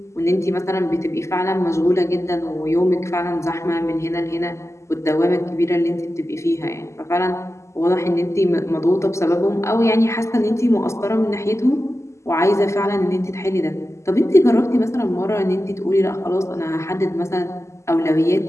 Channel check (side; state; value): right; late; 0.13 ms